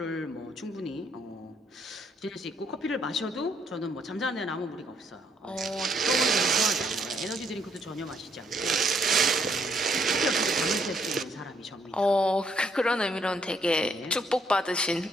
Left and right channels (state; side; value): normal; both; correlation 0.70